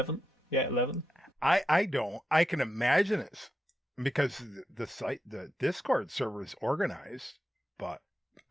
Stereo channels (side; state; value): both; normal; correlation 0.87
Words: Yeah, 11. I don't. I can imagine it because the Discord server is organized, but